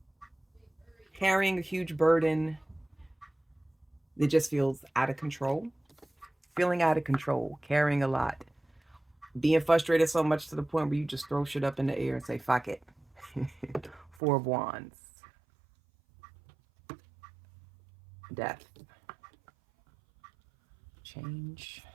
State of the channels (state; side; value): drops out; left; at 14.2 s